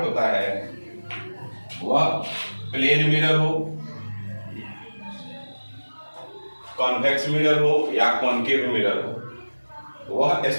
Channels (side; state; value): both; inverted; correlation -1.00